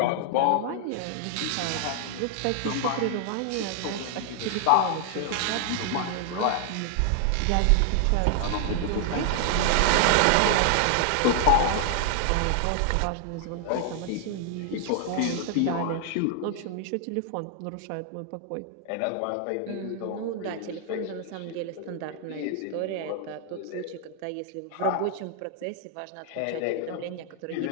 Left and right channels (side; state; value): both; different; correlation 0.00